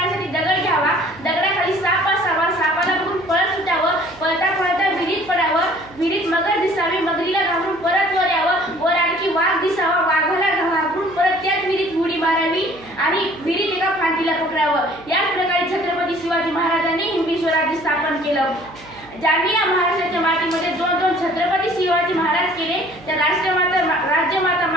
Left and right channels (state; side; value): noise; right; hum, 22 dB below the sound